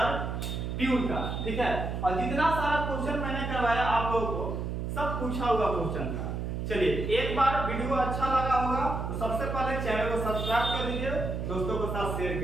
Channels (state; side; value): noise; right; hum, 3 dB below the sound